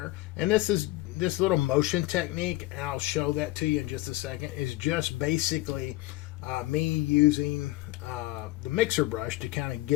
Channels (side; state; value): right; quieter; 18.7 dB